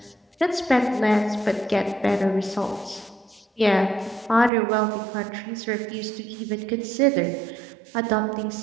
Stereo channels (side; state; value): left; drops out; at 4.5 s